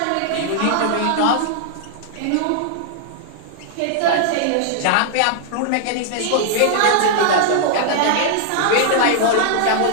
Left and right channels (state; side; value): different; both; correlation -0.01